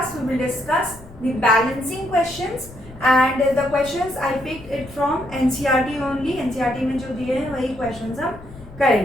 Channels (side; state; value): left; noise; rumble, 18 dB below the sound